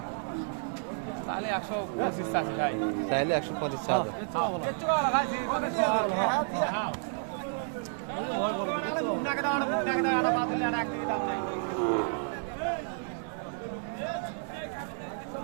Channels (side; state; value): left; silent; digital silence